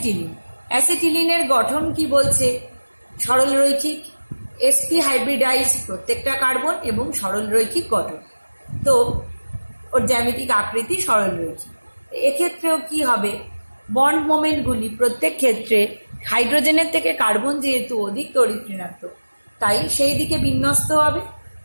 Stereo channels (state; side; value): inverted; both; correlation -1.00